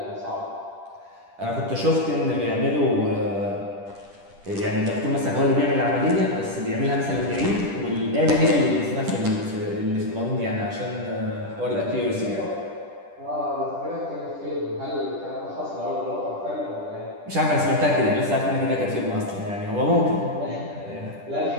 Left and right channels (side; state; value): left; late; 10 ms